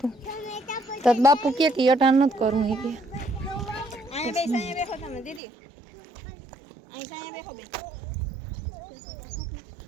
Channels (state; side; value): drops out; left; at 5.4 s